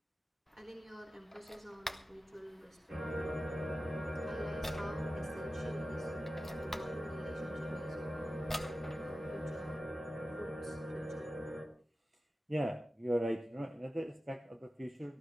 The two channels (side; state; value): both; normal; correlation 0.94